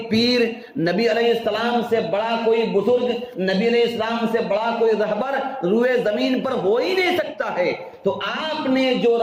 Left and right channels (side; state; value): both; identical; correlation 1.00